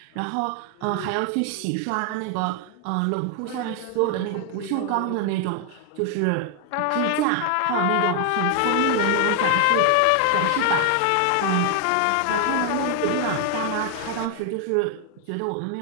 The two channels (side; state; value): both; different; correlation 0.00